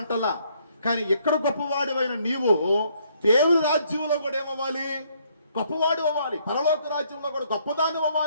అంటలా. కానీ ఎక్కడ గొప్పవాడివైన నీవు దేవుని రాజ్యంలో కూడా ఏమవ్వాలి? గొప్పవాడు అవ్వాలి. పరలోక రాజ్యంలో కూడా గొప్పదాన్ని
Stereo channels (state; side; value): inverted; both; correlation -0.68